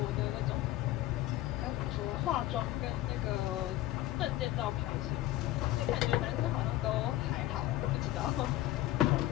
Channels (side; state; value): right; quieter; 15.5 dB